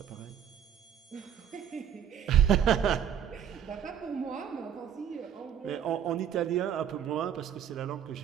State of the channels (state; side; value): quieter; left; 8.9 dB